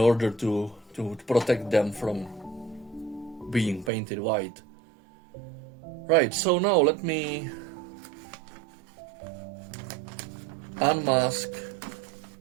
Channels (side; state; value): left; drops out; at 3.9 s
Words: to protect them from being painted white. Right, so now let me unmask